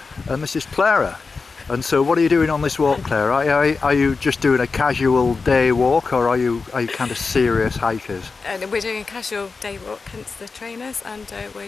and this is Clara. And so, what are you doing on this walk, Claire? Are you just doing a casual day walk, or are you kind of serious hikers? We're doing a casual day walk, hence the trainers, and we're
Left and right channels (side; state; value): right; quieter; 4.5 dB